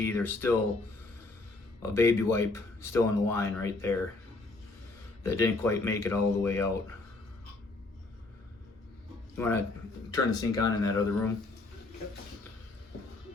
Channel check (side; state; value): right; quieter; 3.2 dB